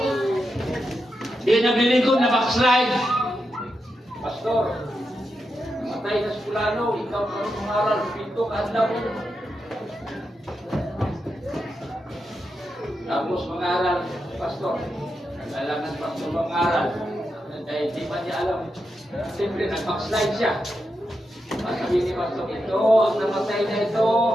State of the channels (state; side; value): normal; both; correlation 0.87